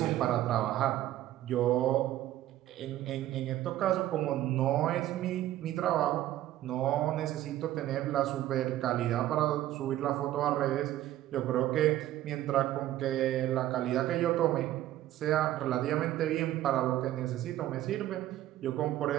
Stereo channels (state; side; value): quieter; left; 13.8 dB